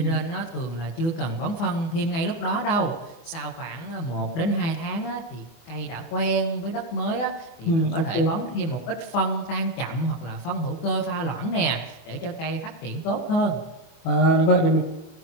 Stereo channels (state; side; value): late; right; 24 ms